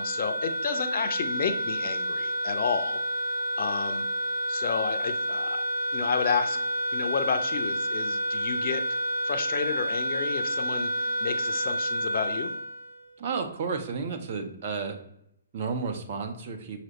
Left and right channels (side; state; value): both; inverted; correlation -0.74